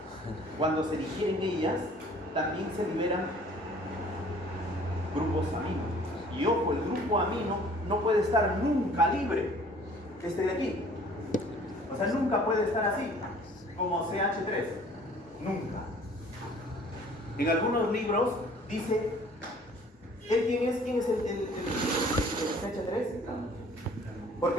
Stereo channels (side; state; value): both; normal; correlation 0.53